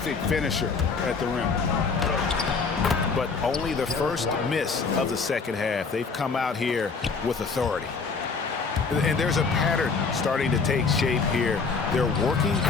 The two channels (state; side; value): quieter; right; 4.8 dB